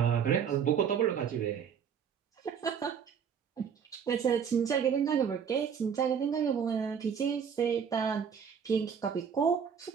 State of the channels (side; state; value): left; quieter; 7.3 dB